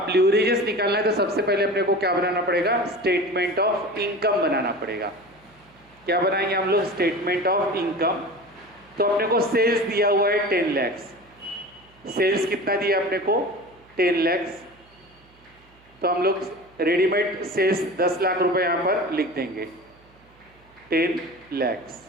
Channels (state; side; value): noise; right; hum, 30 dB below the sound